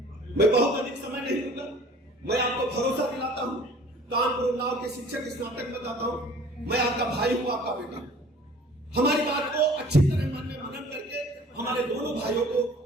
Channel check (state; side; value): normal; both; correlation 0.49